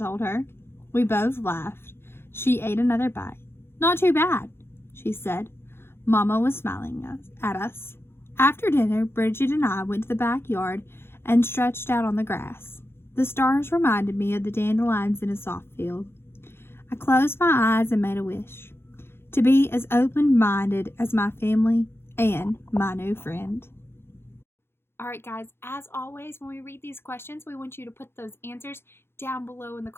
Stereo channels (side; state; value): right; late; 0.11 ms